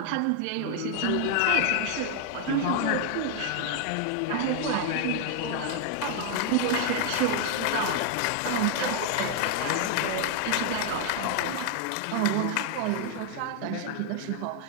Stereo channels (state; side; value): different; both; correlation 0.00